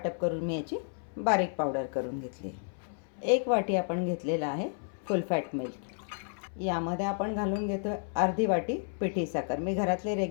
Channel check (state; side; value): silent; right; 57 dB below the other